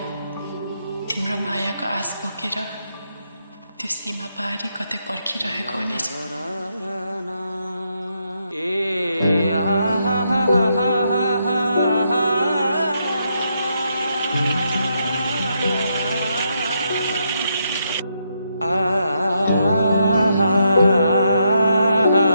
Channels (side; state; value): both; inverted; correlation -0.79